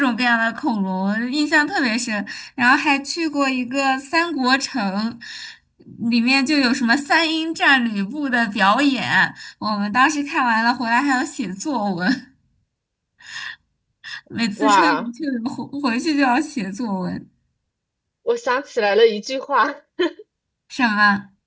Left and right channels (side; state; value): both; identical; correlation 1.00